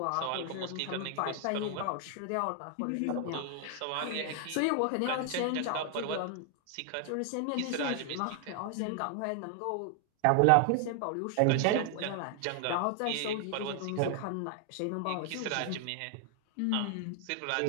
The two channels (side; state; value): both; different; correlation 0.00